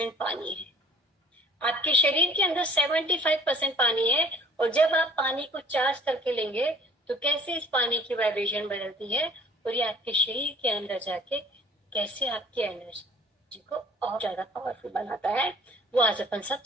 पानी है, आपके शरीर के अंदर 75% पानी है, और जब आप पानी को चार्ज करके लेंगे तो कैसे इस पानी की वाइब्रेशन बदलती है और ये आपके शरीर के अंदर जाके कैसे आपकी एनर्जी को और ज्यादा पावरफुल बनाता है, वो आज अपन सब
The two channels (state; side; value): normal; both; correlation 0.52